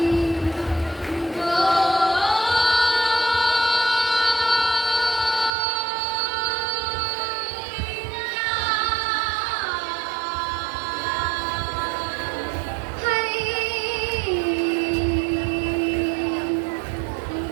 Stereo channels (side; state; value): left; drops out; at 5.5 s